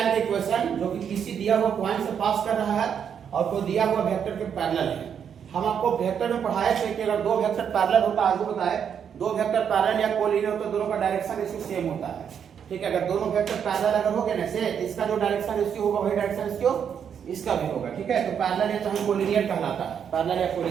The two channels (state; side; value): quieter; left; 7.9 dB